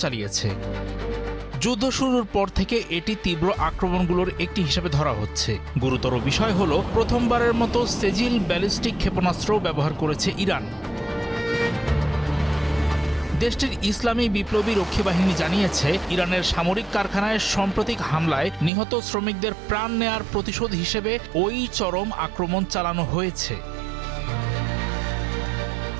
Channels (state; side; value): drops out; left; at 18.7 s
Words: চালিয়েছে। যুদ্ধ শুরুর পর থেকে এটি তীব্র আক্রমণগুলোর একটি হিসেবে ধরা হচ্ছে। গুরুতর বিষয় হলো, প্রথমবারের মতো সেজিল ব্যালিস্টিক ক্ষেপণাস্ত্র ব্যবহার করেছে ইরান। দেশটির ইসলামী বিপ্লবী রক্ষী বাহিনী জানিয়েছে, ইরানের সামরিক কারখানায় সাম্প্রতিক হামলায় নিহত শ্রমিকদের প্রাণ নেয়ার প্রতিশোধ হিসেবে ওই চরম আক্রমণ চালানো হয়েছে।